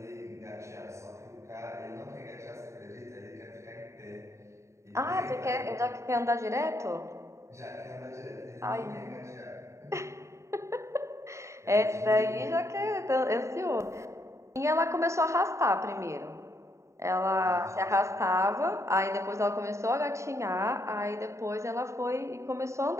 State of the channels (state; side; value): late; left; 0.14 ms